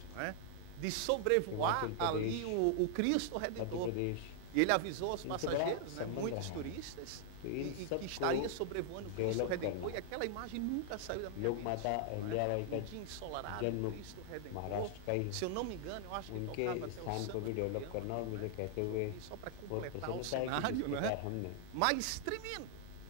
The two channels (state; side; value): different; both; correlation 0.00